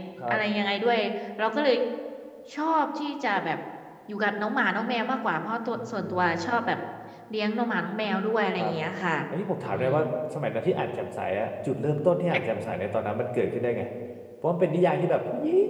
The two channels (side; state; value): both; identical; correlation 1.00